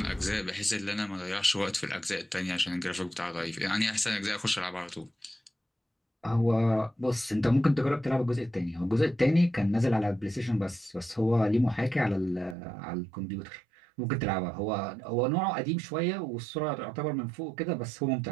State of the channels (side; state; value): left; drops out; at 12.6 s